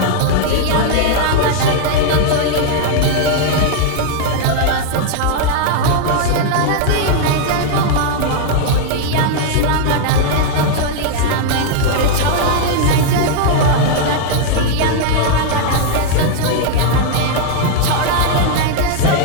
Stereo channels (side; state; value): both; different; correlation 0.00